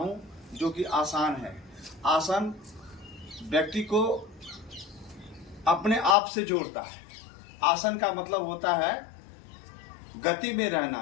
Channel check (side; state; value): right; drops out; at 6.2 s